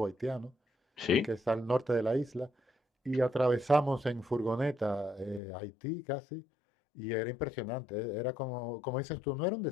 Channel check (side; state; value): right; drops out; at 5.4 s